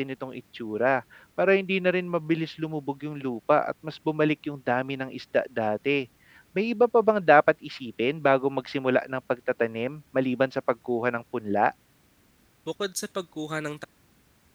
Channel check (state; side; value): identical; both; correlation 1.00